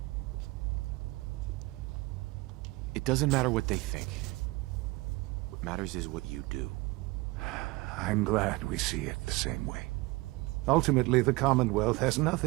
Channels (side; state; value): left; quieter; 22.7 dB